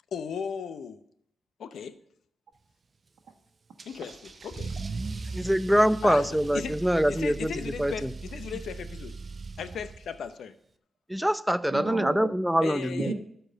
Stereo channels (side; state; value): both; normal; correlation 0.96